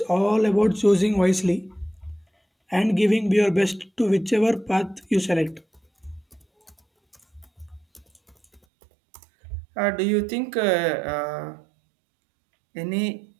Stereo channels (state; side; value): drops out; left; at 8.6 s